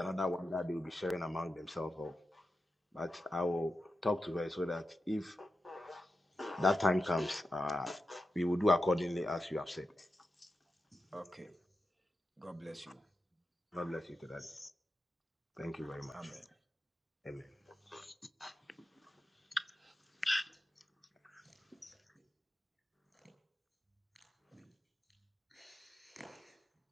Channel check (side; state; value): both; normal; correlation 0.90